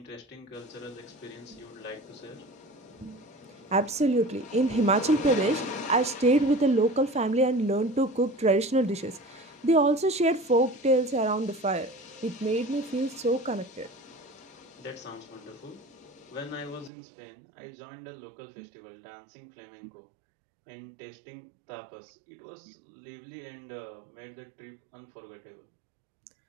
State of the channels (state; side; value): drops out; left; at 16.9 s